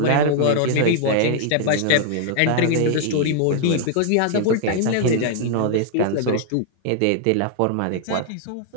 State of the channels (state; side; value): different; both; correlation 0.00